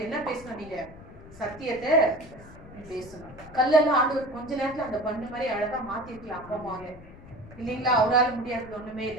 என்ன பேசணும், நீங்க சத்தியத்தை பேசணும். கல்லெல்லாம் ஆண்டவர் கொஞ்ச நேரத்துல அந்த பண்ணு மாதிரி அழகா மாத்திருக்கலாம் அப்பமாவே, இல்லைங்களா? அவரால் முடியாதது ஒண்ணுமே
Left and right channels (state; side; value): noise; left; rumble, 18 dB below the sound